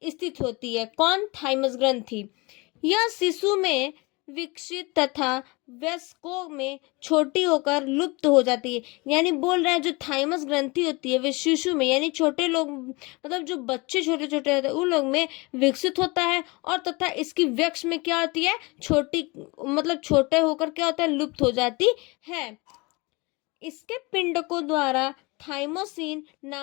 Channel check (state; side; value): quieter; right; 25.9 dB